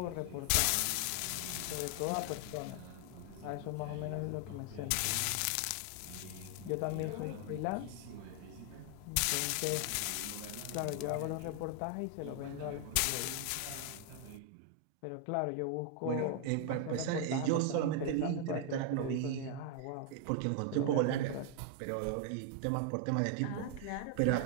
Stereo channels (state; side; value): different; both; correlation 0.00